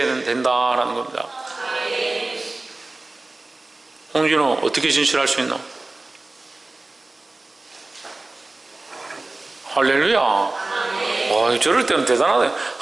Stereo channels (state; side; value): quieter; left; 3.1 dB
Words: 된다라는 겁니다. 홍진호 어떻게 진실할 수 있나? 할렐루야. 와, 저럴 때는 대단하다.